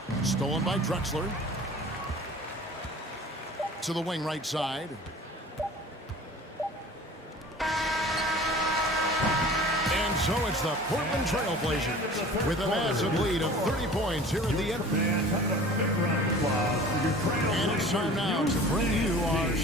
Stolen by Drexler. To the wing right side. And so it's the Portland Trailblazers with a massive lead of 30 points here at the end. And it's time now to bring you our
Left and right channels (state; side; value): normal; both; correlation 0.43